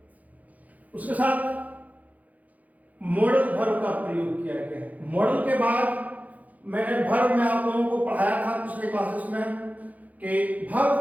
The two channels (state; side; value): late; left; 0.077 ms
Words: उसके साथ मॉडल वर्ब का प्रयोग किया गया है। मॉडल के बाद मैंने वर्ब में आप लोगों को पढ़ाया था पिछले क्लासेस में कि वर्ब